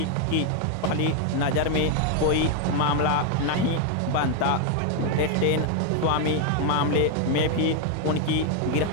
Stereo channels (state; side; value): different; both; correlation 0.00